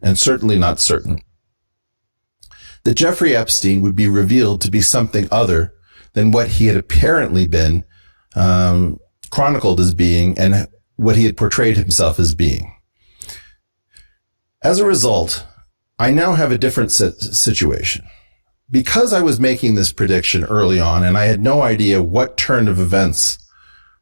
and certainly not certain, that Jeffrey Epstein would be revealed to be something other than what he had apparently been chronicled as being and what he had portrayed himself as being. As a result, I now have a different situation. Because I was making this prediction early on and I had no idea what turn of events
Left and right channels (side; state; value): both; inverted; correlation -1.00